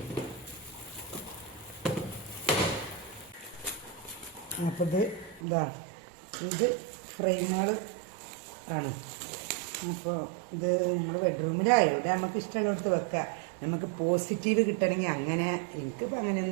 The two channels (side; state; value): left; drops out; at 5.4 s